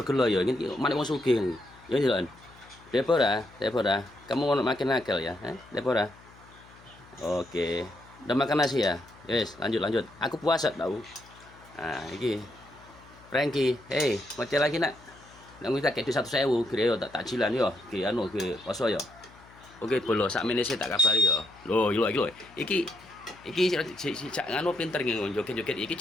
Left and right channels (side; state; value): left; noise; hum, 24 dB below the sound